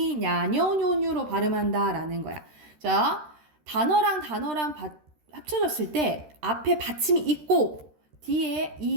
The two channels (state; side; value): late; left; 13 ms